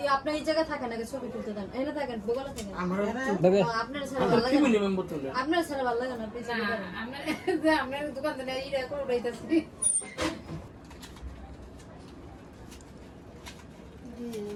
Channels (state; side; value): identical; both; correlation 1.00